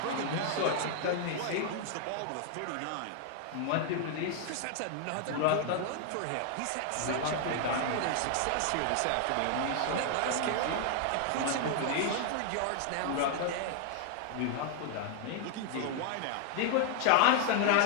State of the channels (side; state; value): both; different; correlation 0.00